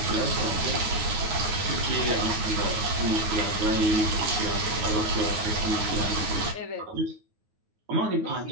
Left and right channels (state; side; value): late; left; 9.4 ms